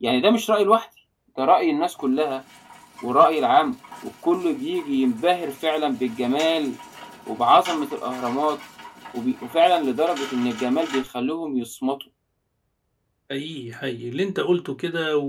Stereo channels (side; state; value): both; identical; correlation 1.00